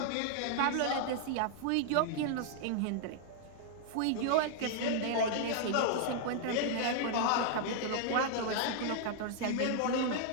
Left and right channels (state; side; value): different; both; correlation -0.01